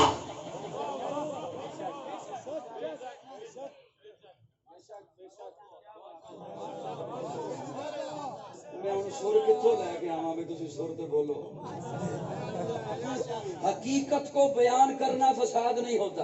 سر کتوں لے کے آواں میں، تسی سر تے بولو۔ حقیقت کو بیان کرنا فساد نہیں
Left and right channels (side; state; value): both; identical; correlation 1.00